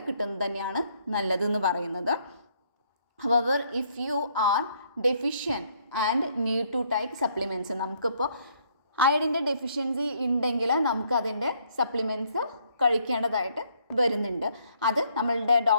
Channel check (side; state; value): both; inverted; correlation -0.68